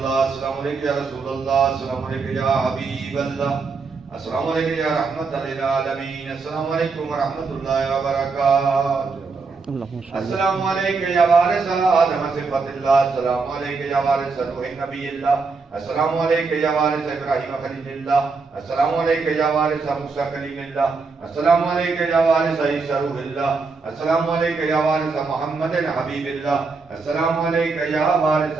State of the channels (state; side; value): quieter; left; 4.5 dB